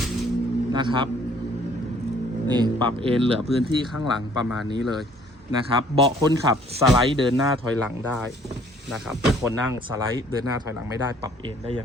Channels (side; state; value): both; normal; correlation 0.59